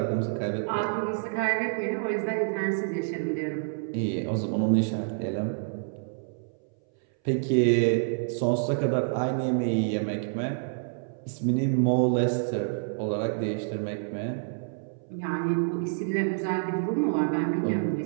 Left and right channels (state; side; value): silent; left; 59 dB below the other